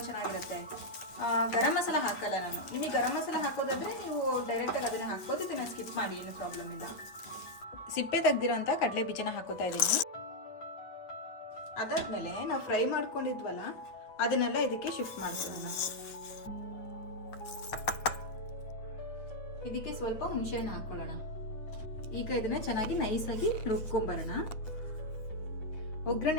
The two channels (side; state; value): right; late; 8.8 ms